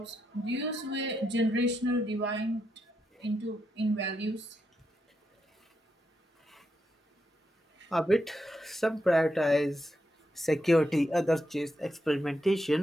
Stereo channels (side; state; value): both; normal; correlation 0.83